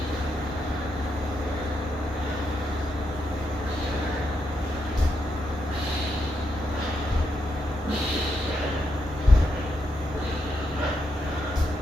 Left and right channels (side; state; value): both; normal; correlation 0.81